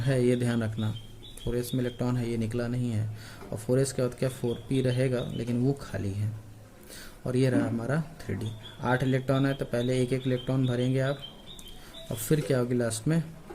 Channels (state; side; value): identical; both; correlation 1.00